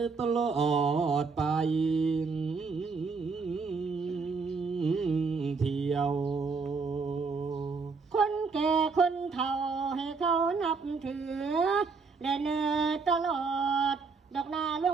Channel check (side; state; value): left; quieter; 4.7 dB